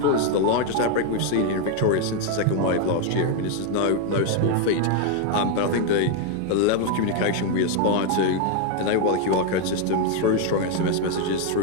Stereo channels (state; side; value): different; both; correlation 0.00